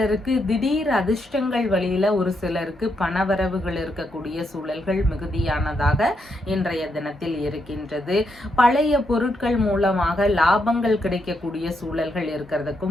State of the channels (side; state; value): both; normal; correlation 0.80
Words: திடீர் அதிர்ஷ்டங்கள் வழியில ஒரு சிலருக்கு பணவரவுகள் இருக்கக்கூடிய சூழல்கள் மிகுதியானதாக இன்றைய தினத்தில் இருக்கின்றது. பழைய பொருட்கள் மூலமாக லாபங்கள் கிடைக்கக்கூடிய சூழல்கள்